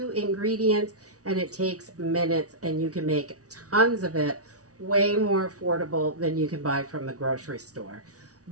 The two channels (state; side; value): late; left; 0.67 ms